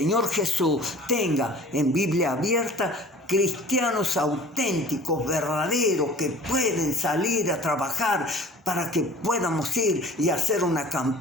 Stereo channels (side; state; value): both; normal; correlation 0.44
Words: Jesús tenga en Biblia abierta cristianos auténticos, verdaderos, que pueden salir a trabajar para que podamos ir y hacer una